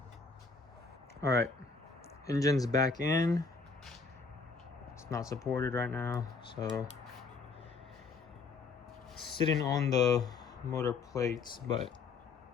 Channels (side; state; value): right; quieter; 4.5 dB